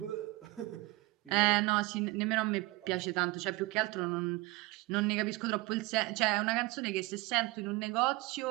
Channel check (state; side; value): quieter; left; 21.1 dB